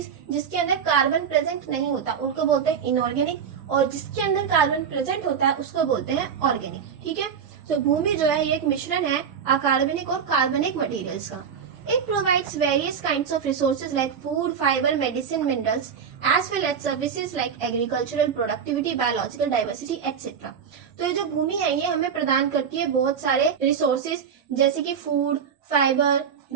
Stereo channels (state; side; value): quieter; left; 7.1 dB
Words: जिसके अंदर कार्बन प्रेजेंट नहीं होता उनको बोलते हैं इनऑर्गेनिक, और जिसके अंदर कार्बन प्रेजेंट होता है उसको बोलते हैं ऑर्गेनिक। ठीक है। तो भूमि जो है ये एक मिश्रण है अकार्बनिक और कार्बनिक मटेरियल्स का। It provides various kinds of resources like food, fiber, medicine, minerals, as well as services like agricultural productivity, biological diversity, etc. तो ये जो भूमि है ये हमें प्रदान करती है बहुत सारे रिसोर्सेज, जैसे कि फूड, फाइबर,